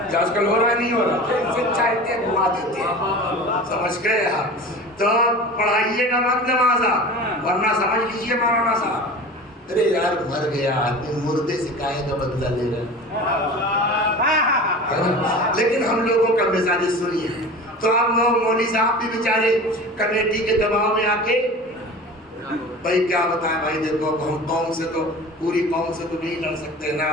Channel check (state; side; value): normal; both; correlation 0.36